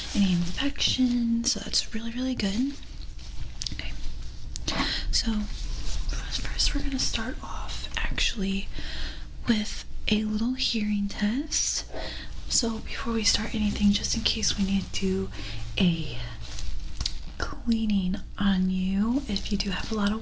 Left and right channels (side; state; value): both; identical; correlation 1.00